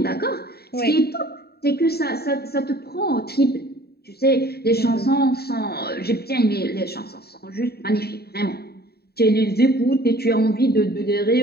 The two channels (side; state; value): right; late; 0.46 ms